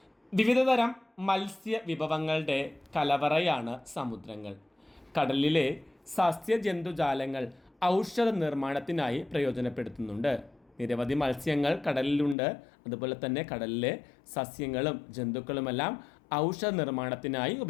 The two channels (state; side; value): drops out; right; at 12.4 s